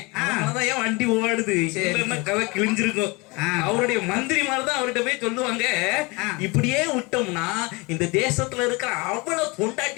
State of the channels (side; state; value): right; quieter; 26.4 dB